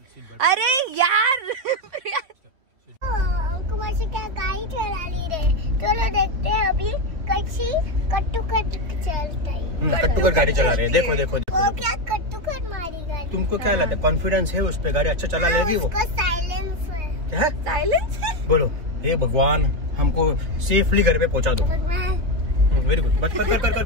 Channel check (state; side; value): late; left; 3.4 ms